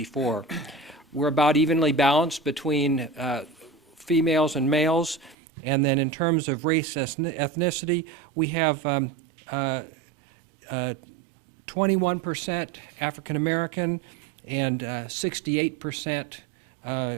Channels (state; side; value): drops out; left; at 5.4 s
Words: We're about evenly balanced between females and males. And then in terms of race ethnicity, we have 21% African American and 68%